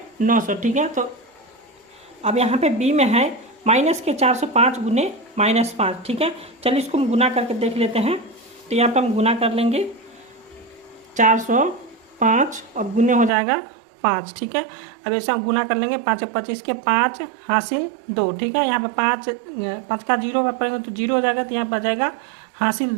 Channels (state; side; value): drops out; left; at 13.3 s